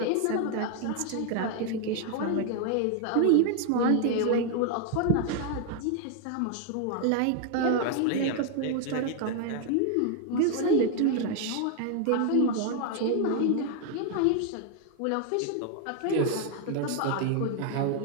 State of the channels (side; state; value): both; different; correlation 0.00